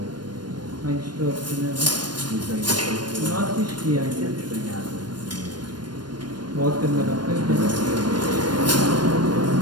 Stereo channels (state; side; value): late; left; 0.71 ms